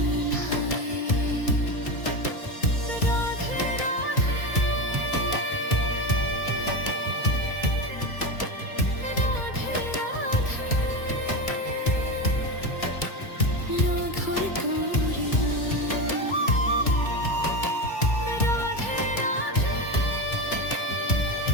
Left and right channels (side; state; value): right; late; 2.3 ms